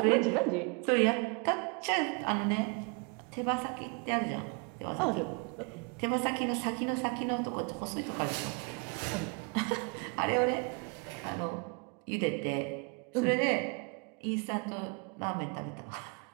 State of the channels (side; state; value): left; quieter; 34.3 dB